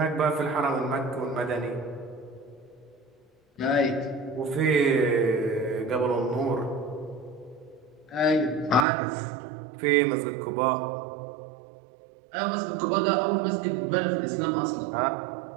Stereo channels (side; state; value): left; drops out; at 8.8 s